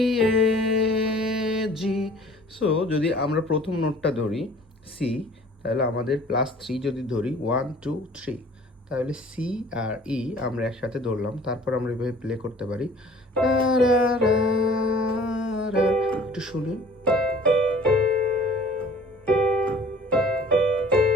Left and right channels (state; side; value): normal; both; correlation 0.50